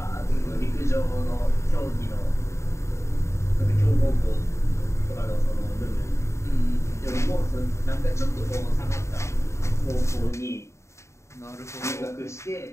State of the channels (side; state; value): right; late; 0.14 ms